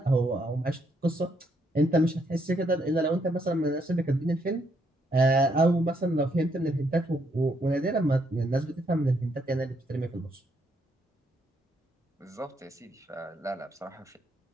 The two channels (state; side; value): normal; both; correlation 0.74